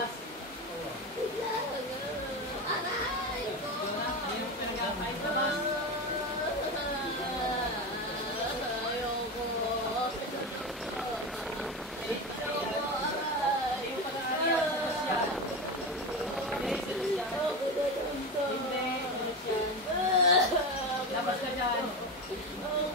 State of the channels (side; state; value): both; normal; correlation 0.21